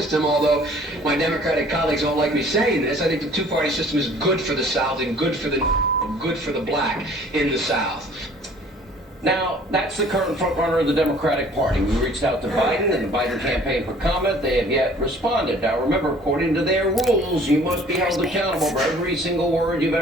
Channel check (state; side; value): normal; both; correlation 0.53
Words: although my Democratic colleagues don't like me saying this, I think the two-party system is good for the South and good for the black in the South. Now, that's the current frontrunner of the Democratic Party. We reached out to Biden and the Biden campaign for comment. They have yet responded. Now, remember, according to their rules, you must be held accountable for every single word you've